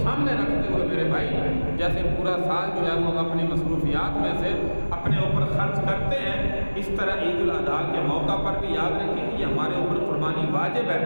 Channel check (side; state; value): both; inverted; correlation -1.00